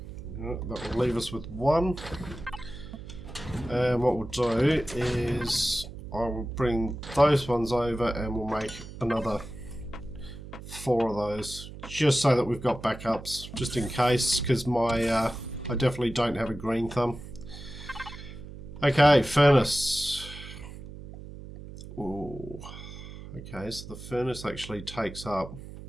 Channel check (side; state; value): right; noise; hum, 13 dB below the sound